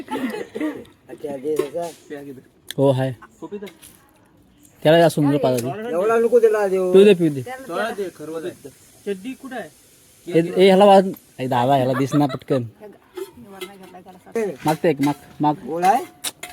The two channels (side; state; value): both; identical; correlation 1.00